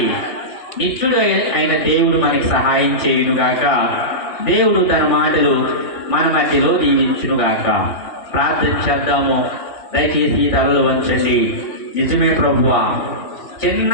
నిత్యుడు అయిన దేవుడు మనకి సహాయం చేయునుగాక. దేవుడు తన మాటలు మన మధ్యలో దీవించునుగాక. ప్రార్థన చేద్దాము. దయచేసి తలలు వంచండి. నిజమే ప్రభువా, చిన్న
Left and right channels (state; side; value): late; right; 3.5 ms